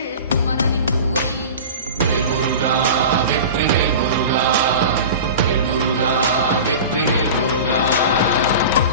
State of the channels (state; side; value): inverted; both; correlation -0.34